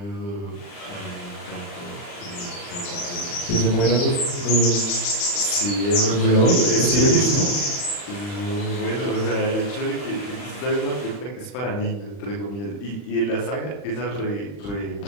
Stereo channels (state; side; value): late; right; 40 ms